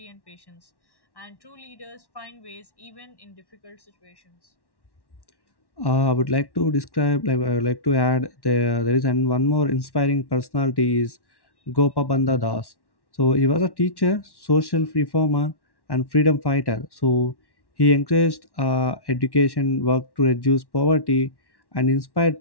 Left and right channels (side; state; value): right; late; 1.1 ms